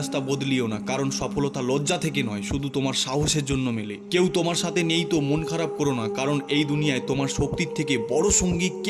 বদলিও না, কারণ সফলতা লজ্জা থেকে নয়, শুধু তোমার সাহসের জন্য মেলে। কেউ তোমার সাথে নেই তো মন খারাপ করো না, কারণ এই দুনিয়ায় তোমার শক্তির থেকে বড় সঙ্গী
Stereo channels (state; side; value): identical; both; correlation 1.00